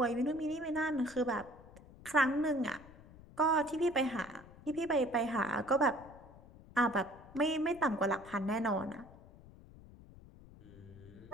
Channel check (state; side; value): noise; left; rumble, 20 dB below the sound